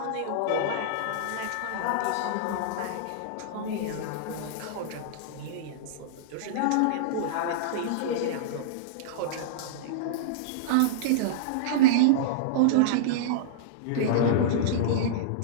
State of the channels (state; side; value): different; both; correlation -0.02